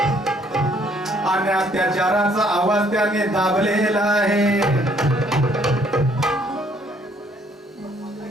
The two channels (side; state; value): both; normal; correlation 0.64